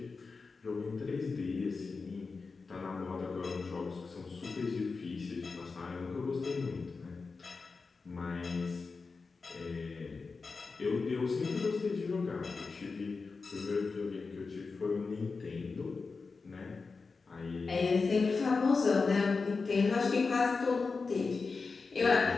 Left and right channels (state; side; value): quieter; right; 4.4 dB